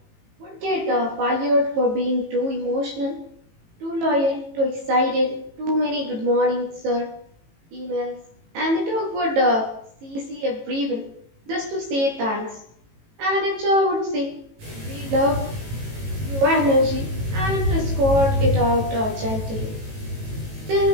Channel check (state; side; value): late; left; 18 ms